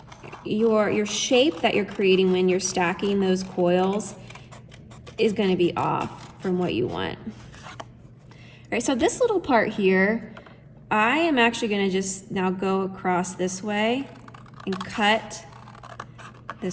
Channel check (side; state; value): both; identical; correlation 1.00